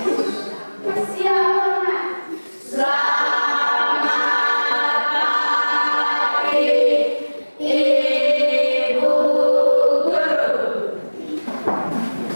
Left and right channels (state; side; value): inverted; both; correlation -1.00